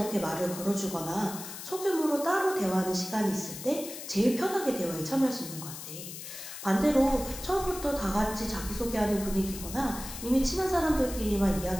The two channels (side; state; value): left; noise; hiss, 10 dB below the sound